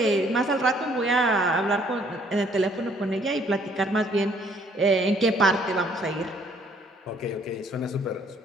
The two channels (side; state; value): both; normal; correlation 0.63